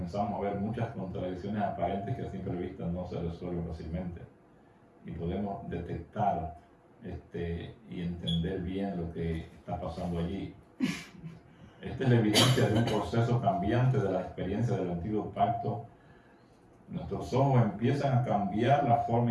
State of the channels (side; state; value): both; identical; correlation 1.00